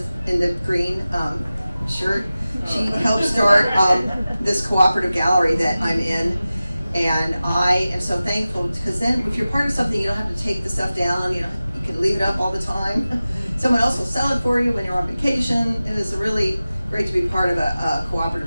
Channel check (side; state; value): both; inverted; correlation -0.96